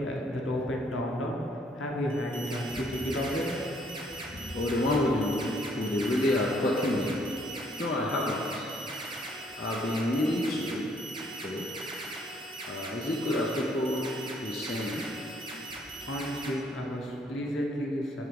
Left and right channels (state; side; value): normal; both; correlation 0.66